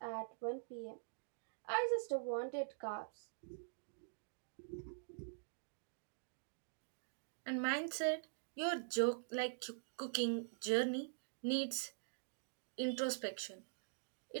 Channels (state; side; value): silent; left; digital silence